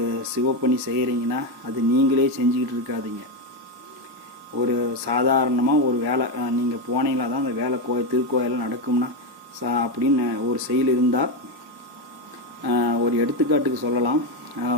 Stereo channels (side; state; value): left; late; 1.3 ms